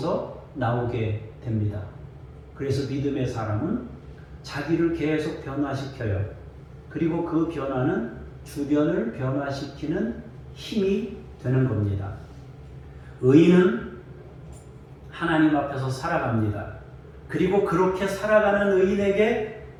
나오게 됩니다. 그래서 믿음의 사람은 자기를 계속 변화시켜요. 그리고 그 변화는 주변을 변화시키는 힘이 되는 겁니다. 의인은 하나님 앞에서 살아갑니다. 그리고 그렇게 살아가는 의인에게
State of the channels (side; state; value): both; identical; correlation 1.00